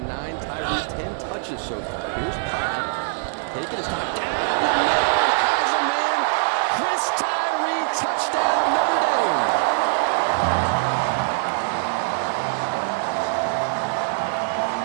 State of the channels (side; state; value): left; silent; digital silence